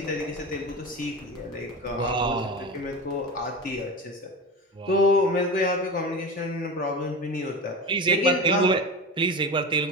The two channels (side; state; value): both; normal; correlation 0.26